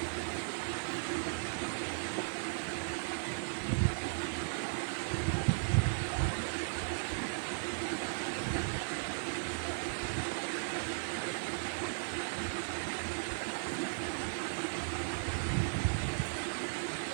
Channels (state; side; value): silent; left; digital silence